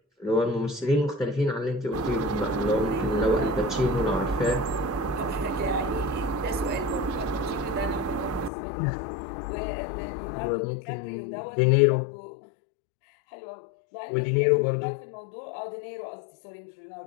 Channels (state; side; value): drops out; right; at 8.5 s